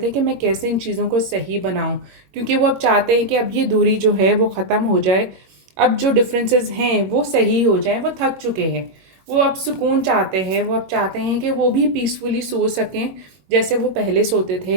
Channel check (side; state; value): left; late; 21 ms